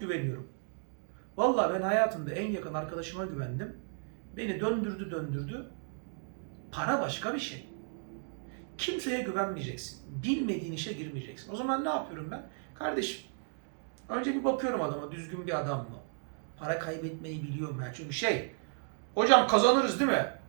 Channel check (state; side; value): silent; left; 55 dB below the other